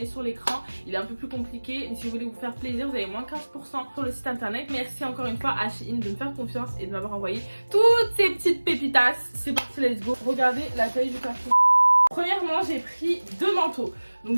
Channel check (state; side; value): inverted; both; correlation -1.00